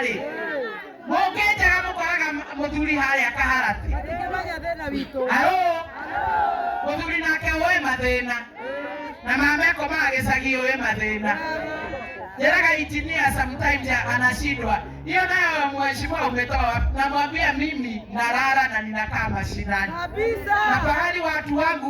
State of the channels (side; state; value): both; identical; correlation 1.00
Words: mũngĩnjaga mũkoraga mũthuri harĩa Kaharati mũthuri nake ũĩ mathĩna na mama ekomaga gĩcagi ũĩ mathĩna njĩraga injinia sometimes anashindwa hiyo nayo mheshimiwa umetoa namwambia mimi nalala na ninakaa mashinani na pahali watu